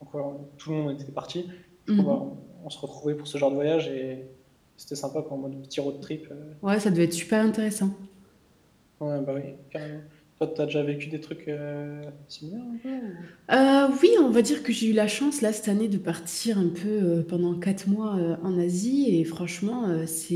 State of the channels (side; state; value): both; identical; correlation 1.00